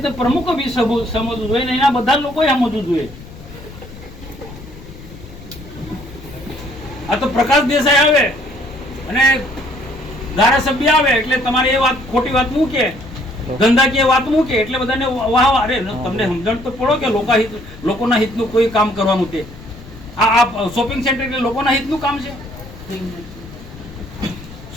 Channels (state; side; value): noise; left; rumble, 17 dB below the sound